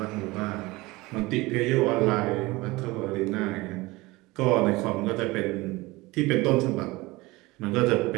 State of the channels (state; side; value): quieter; left; 21.6 dB